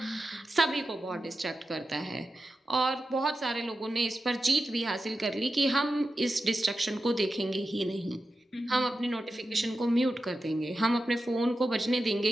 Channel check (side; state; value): both; normal; correlation 0.91